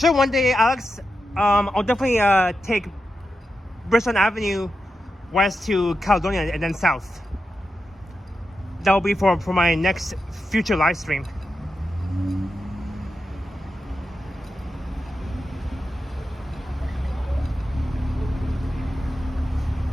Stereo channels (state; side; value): normal; both; correlation 0.89